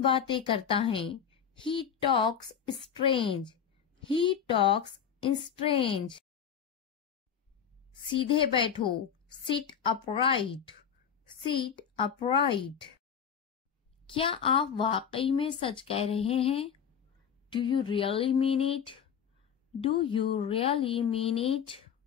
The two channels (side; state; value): right; quieter; 7.8 dB